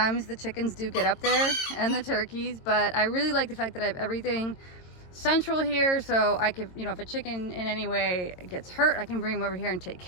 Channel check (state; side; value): late; right; 22 ms